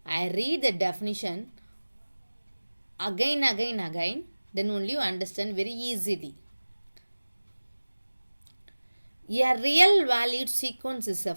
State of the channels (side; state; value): both; inverted; correlation -1.00